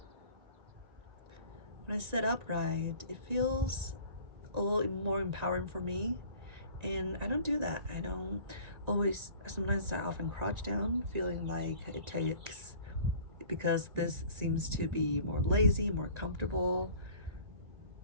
When I sit upright, it feels a little more empowering for me. And I don't do that. I don't always, sometimes I often crouch down, feeling like it takes, because this seems to be more lazy, more comfortable,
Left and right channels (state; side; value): late; left; 1.9 ms